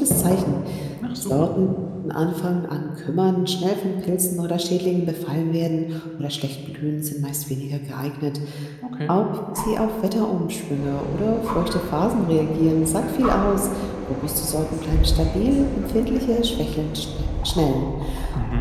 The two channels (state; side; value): identical; both; correlation 1.00